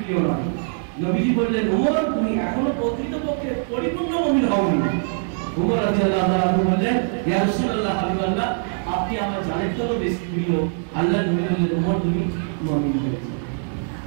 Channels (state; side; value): silent; left; 64 dB below the other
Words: নয়। নবীজি বললেন, ওমর, তুমি এখনো প্রকৃতপক্ষে পরিপূর্ণ মুমিন হওনি। ওমর রাদিয়াল্লাহু তাআলা বললেন, ইয়া রাসূলুল্লাহ, হাবিবাল্লাহ, আপনি আমার জানের থেকেও বেশি প্রিয়। আল্লাহ নবী বললেন, ওমর, তুমি মুমিন হয়েছো,